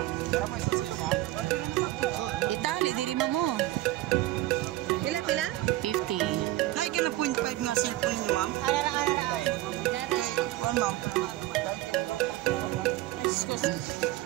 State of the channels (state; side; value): quieter; left; 16.5 dB